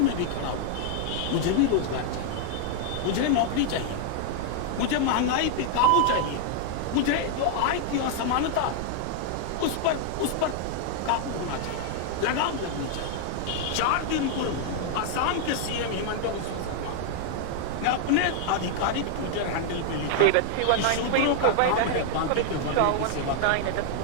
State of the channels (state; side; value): different; both; correlation 0.00